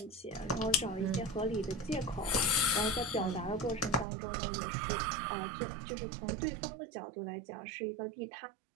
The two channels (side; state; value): left; drops out; at 4.0 s